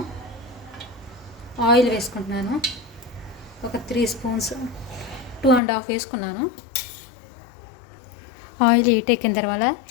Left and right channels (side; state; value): right; drops out; at 5.6 s